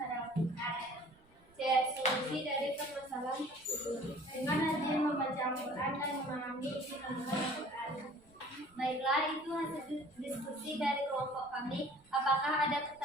pada Al-Quran. C. Solusi dari permasalahan tersebut. Dengan rajin membaca Al-Quran dan memahami isi kandungan Al-Quran. Baiklah, itu hasil diskusi dari kelompok kami. Apakah ada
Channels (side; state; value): right; noise; rumble, 29 dB below the sound